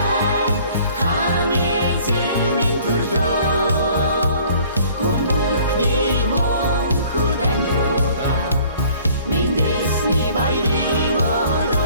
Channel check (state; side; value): inverted; both; correlation -0.54